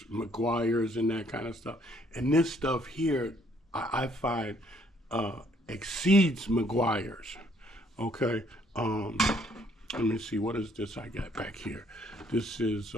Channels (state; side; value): normal; both; correlation 0.65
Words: McGuire's and that kind of stuff. And this stuff here, I find exceeds McGuire's. Okay. Let me see, what is this I got back here? This is